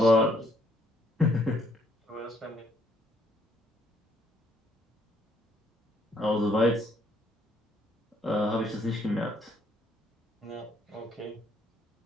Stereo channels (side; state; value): both; normal; correlation 0.68